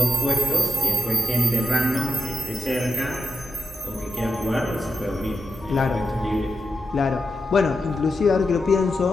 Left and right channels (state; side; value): normal; both; correlation 0.89